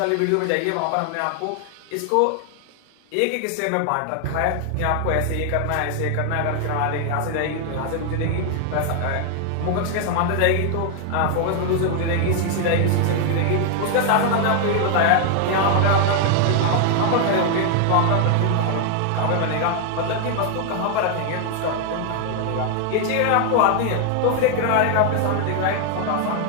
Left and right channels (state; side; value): different; both; correlation 0.00